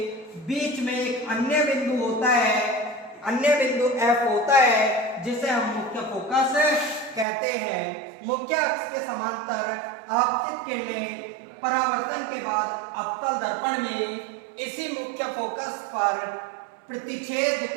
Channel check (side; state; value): left; drops out; at 7.2 s